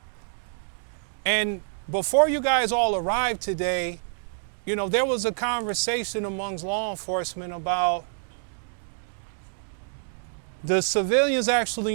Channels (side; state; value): left; silent; digital silence